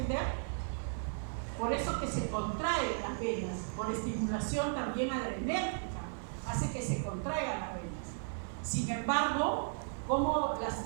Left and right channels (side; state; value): left; silent; digital silence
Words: Por eso que se contraen las venas, por estimulación también adrenérgica, hace que se contraigan las venas. Sin embargo, como